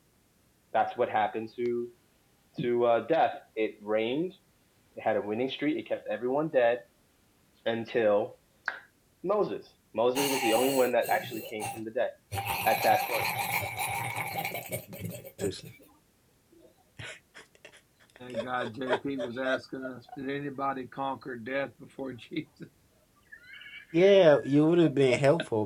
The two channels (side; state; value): both; identical; correlation 1.00